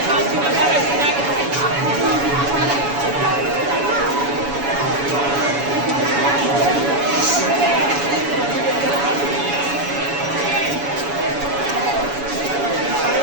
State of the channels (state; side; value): late; left; 7.1 ms